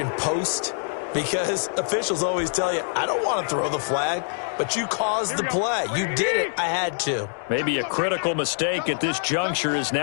post, because officials always tell you, I don't want to throw the flag, but you caused the play. You did it. I had to. Maybe a critical mistake at this juncture is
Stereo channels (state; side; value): silent; right; digital silence